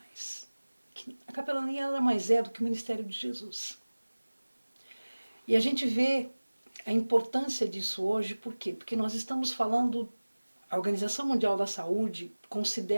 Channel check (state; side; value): inverted; both; correlation -1.00